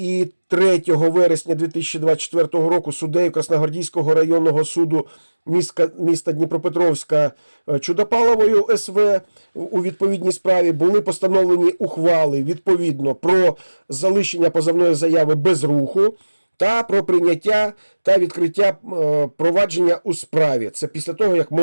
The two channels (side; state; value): both; inverted; correlation -1.00